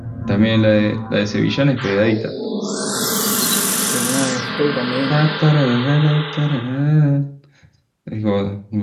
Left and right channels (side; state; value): both; identical; correlation 1.00